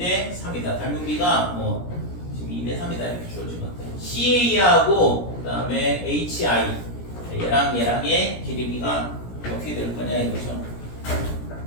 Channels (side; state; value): right; late; 17 ms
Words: 3이다. 닮은 비가 뭐 지금 2대 3이다 이렇게 주어진 것 같아요. CA하고 그 다음에 HI 얘랑의 길이비가 어떻게 될 거냐 이거죠.